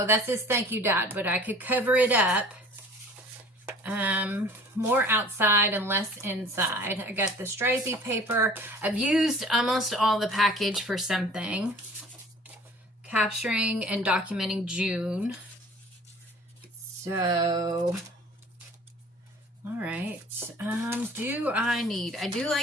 that says thank you, Dad, but I could cover it up. More outside and less inside. I got the stripey paper. I've used almost all the package for something. Capturing and documenting June. So, all right. I do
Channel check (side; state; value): both; normal; correlation 0.48